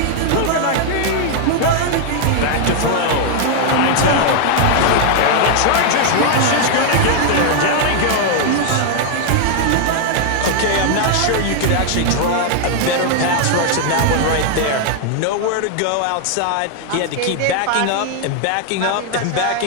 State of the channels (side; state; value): both; different; correlation 0.00